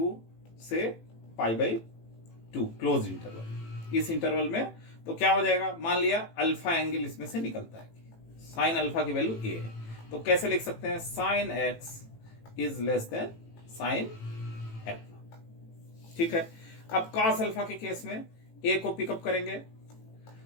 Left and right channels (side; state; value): right; late; 18 ms